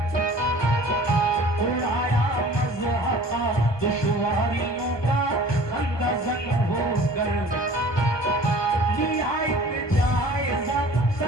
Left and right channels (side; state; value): right; late; 1.3 ms